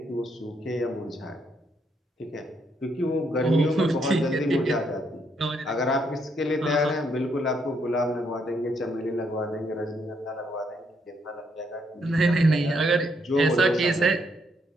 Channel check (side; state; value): both; normal; correlation 0.74